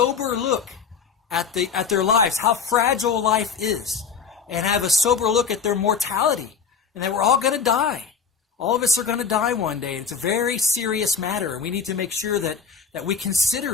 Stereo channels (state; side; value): quieter; right; 6.2 dB